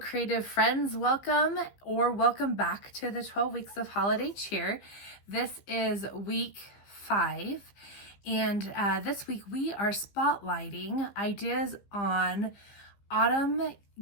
friends. Welcome back to the 12 weeks of holiday cheer. This is week 5, and this week we are spotlighting ideas on autumn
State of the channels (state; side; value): late; right; 15 ms